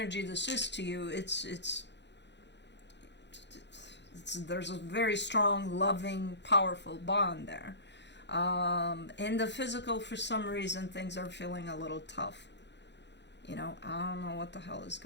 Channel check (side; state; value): right; late; 0.51 ms